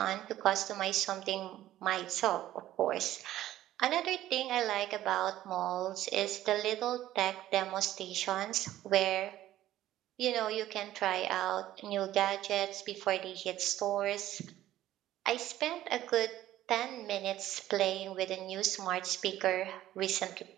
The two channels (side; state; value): left; quieter; 13.7 dB